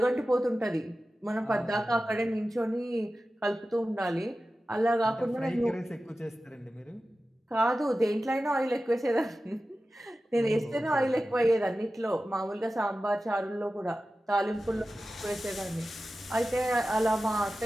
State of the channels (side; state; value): both; normal; correlation 0.94